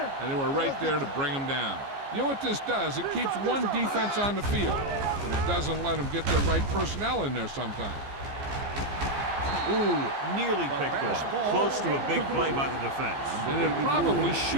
they were right there to bring them down. You know what this does? It keeps one defense on the field, and it doesn't let them get the right personnel in there sometimes. Ooh, nearly picked off. Close to a big play by the defense. And it probably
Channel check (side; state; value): left; late; 15 ms